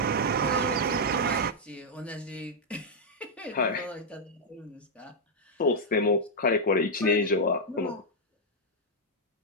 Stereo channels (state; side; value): normal; both; correlation -0.04